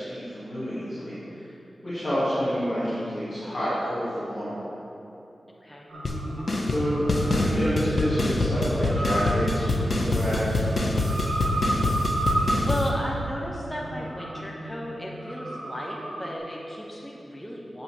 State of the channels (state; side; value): normal; both; correlation 0.87